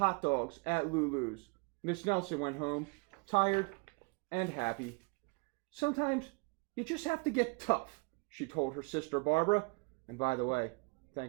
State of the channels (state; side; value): quieter; left; 30.8 dB